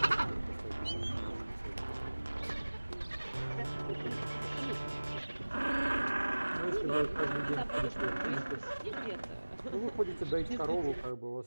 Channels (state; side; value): inverted; both; correlation -1.00